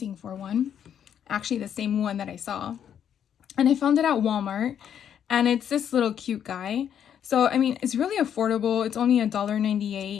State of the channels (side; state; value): right; quieter; 9.0 dB